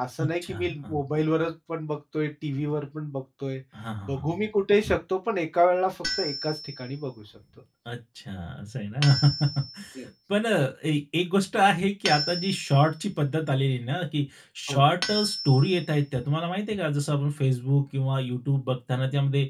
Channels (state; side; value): identical; both; correlation 1.00